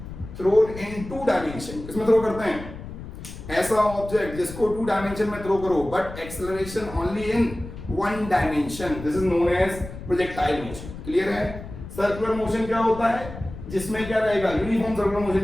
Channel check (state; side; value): noise; left; rumble, 12 dB below the sound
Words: thrown in two dimension. किसमें थ्रो करते हैं? ऐसा ऑब्जेक्ट जिसको टू डायमेंशन में थ्रो करो but acceleration only in one dimension, this is known as projectile motion. Clear है? Circular motion क्या होता है? जिसमें क्या रहेगा? यूनिफॉर्म सर्कुलर